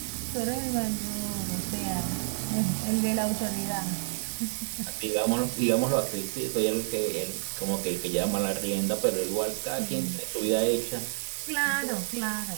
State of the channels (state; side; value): silent; left; digital silence